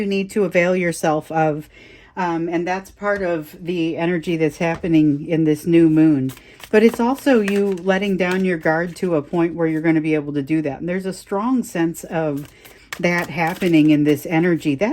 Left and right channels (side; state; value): both; identical; correlation 1.00